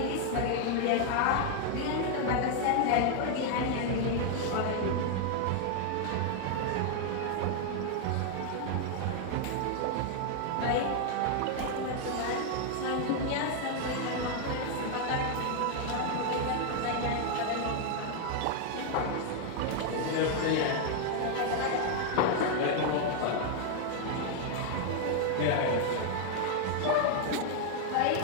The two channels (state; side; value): different; both; correlation 0.00